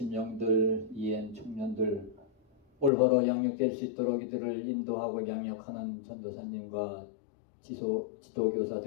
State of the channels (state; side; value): drops out; right; at 2.9 s